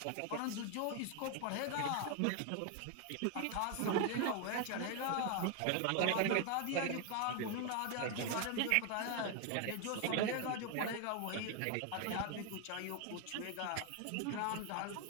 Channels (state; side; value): different; both; correlation 0.01